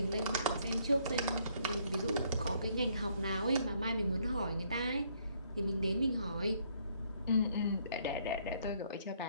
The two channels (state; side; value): inverted; both; correlation -0.67